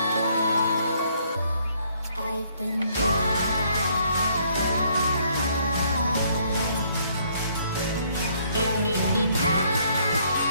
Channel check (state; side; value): inverted; both; correlation -0.66